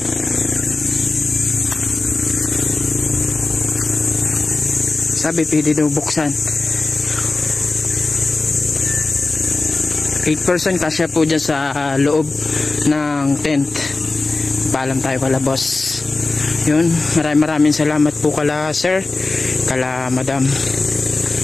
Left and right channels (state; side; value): quieter; right; 3.4 dB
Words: Sabi pwede daw buksan. 8 person kasya po dyan sa loob ng tent. Paalam tayo kala boss. Yun, maraming salamat po kala sir, kala madam.